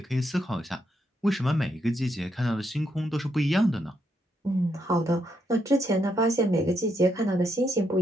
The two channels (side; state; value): both; normal; correlation 0.78